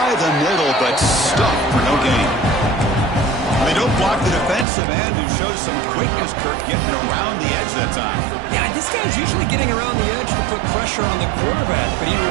the middle, but stuck for no gain. They don't block the defensive end, who shows some quickness, Kirk, getting around the edge that time. Yeah, this guy's usually getting around the edge to put pressure on the quarterback, but he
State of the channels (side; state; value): left; drops out; at 4.7 s